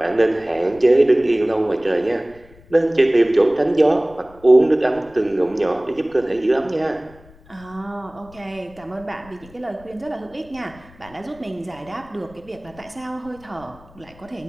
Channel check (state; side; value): noise; left; rumble, 24 dB below the sound